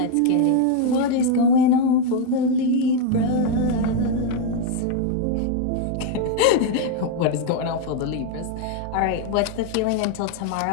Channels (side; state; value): both; different; correlation 0.01